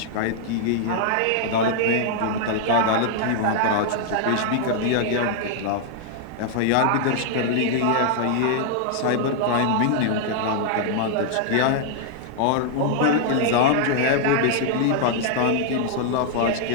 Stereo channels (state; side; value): different; both; correlation 0.00